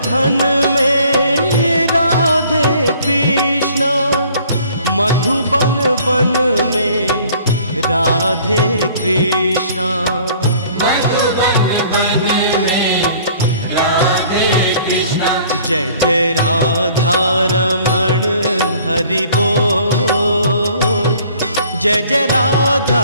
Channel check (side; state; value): both; inverted; correlation -0.54